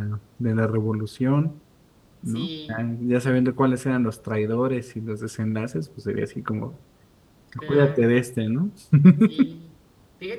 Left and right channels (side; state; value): both; identical; correlation 1.00